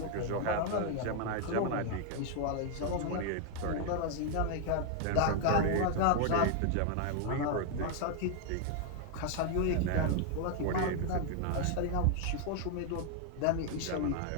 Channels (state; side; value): different; both; correlation 0.00